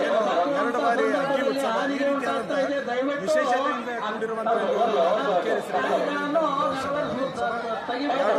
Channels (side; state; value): both; identical; correlation 1.00